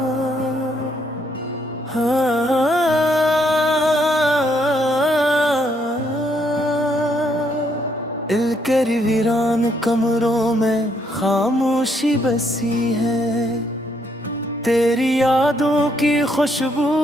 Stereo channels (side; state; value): both; normal; correlation 0.72